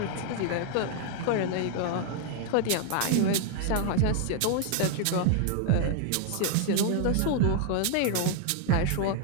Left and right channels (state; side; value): different; both; correlation 0.00